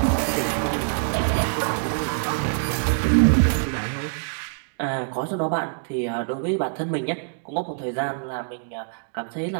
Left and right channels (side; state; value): left; silent; digital silence